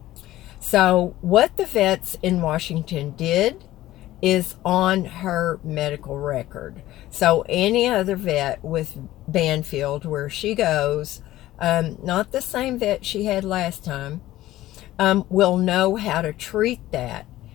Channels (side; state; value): right; quieter; 15.4 dB